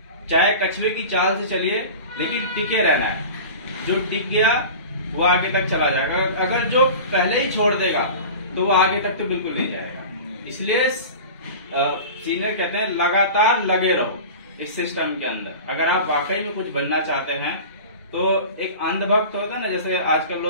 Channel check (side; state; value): both; inverted; correlation -0.35